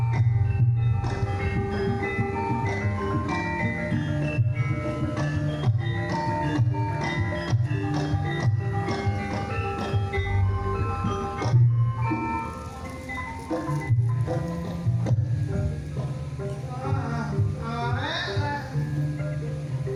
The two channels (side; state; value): both; identical; correlation 1.00